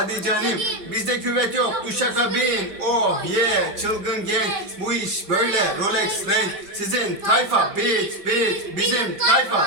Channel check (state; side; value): late; left; 5.1 ms